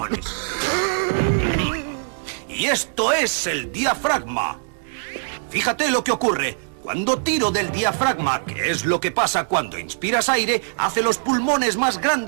Y esto es el diafragma. Fíjate lo que ocurre. Cuando tiro del diafragma, que es lo que pasa cuando inspiras aire, hace los pulmones más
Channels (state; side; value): silent; left; digital silence